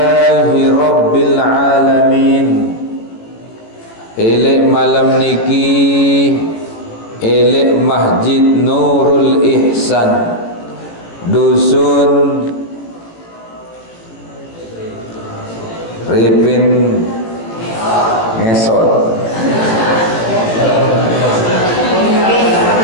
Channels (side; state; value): right; late; 18 ms